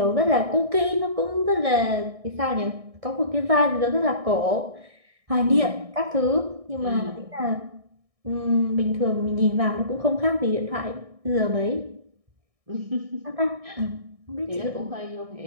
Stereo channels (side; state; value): left; late; 1.6 ms